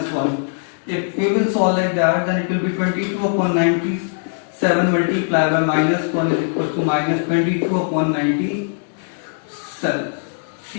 1. If we will solve like that, then it will be 22 upon 97 multiplied by minus 1 is equals to minus 22 upon 97.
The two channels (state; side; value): silent; right; digital silence